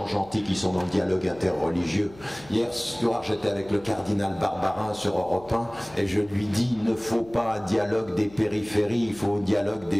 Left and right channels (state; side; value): noise; left; hum, 22 dB below the sound